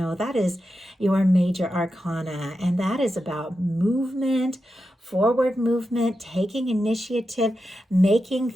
that is your major arcana, and that is about movement, forward movement, taking initiative, making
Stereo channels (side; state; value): both; normal; correlation 0.89